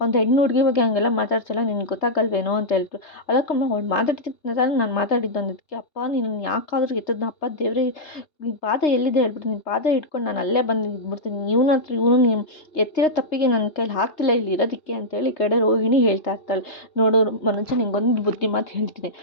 ಒಂದು ಹೆಣ್ಣು ಹುಡುಗಿ ಬಗ್ಗೆ ಹಂಗೆಲ್ಲ ಮಾತಾಡ್ತಲ್ಲ, ನಿನ್ಗೆ ಗೊತ್ತಾಗಲ್ವೇನೋ ಅಂತ ಹೇಳ್ತು. ಅಲ್ಲಕ್ಕಮ್ಮ ಅವಳು ಮಾತಾಡ್ತಿದ್ದ ನಾನು ಮಾತಾಡಿದ್ದು ಅಂದಿದ್ದಕ್ಕೆ, ಅಪ್ಪ ನೀನು ಯಾಕಾದ್ರೂ ಎತ್ತದ್ನ ಅಪ್ಪ ದೇವ್ರೇ, ನಿನ್ನ ಪಾದ ಎಲ್ಲಿದೆ ಹೇಳ್ಬಿಟ್ಟು ನಿನ್ನ ಪಾದ ಇಟ್ಕೊಂಡು ನಾನು ಅಲ್ಲೇ ಬಂದು ಇದ್ಬಿಡ್ತೀನಿ, ಇವನು ನೀವು ಎತ್ತಿರೋ ತಪ್ಪಿಗೆ ನನ್ನ ಕೈಲಿ ಆಗ್ತಿಲ್ಲ ಇಲ್ಲಿ ಇರೋದಕ್ಕೆ ಅಂತೇಳಿ ಈ ಕಡೆ ರೋಹಿಣಿ ಹೇಳ್ತಾ ಇರ್ತಾಳೆ. ನೋಡು ಮನೋಜ ನಿಂಗೊಂದು ಬುದ್ಧಿ ಮಾತು ಹೇಳ್ತೀನಿ,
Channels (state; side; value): late; right; 3.3 ms